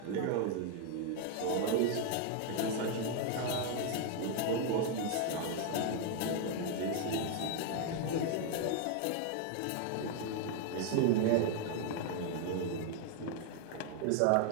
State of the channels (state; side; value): different; both; correlation 0.01